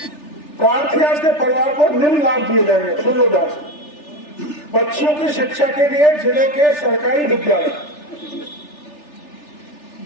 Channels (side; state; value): right; late; 3.4 ms